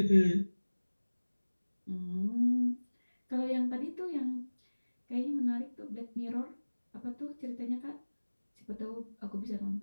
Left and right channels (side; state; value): both; inverted; correlation -1.00